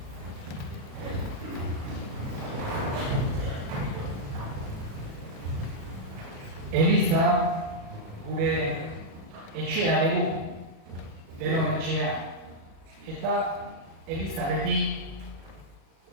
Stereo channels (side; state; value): left; late; 37 ms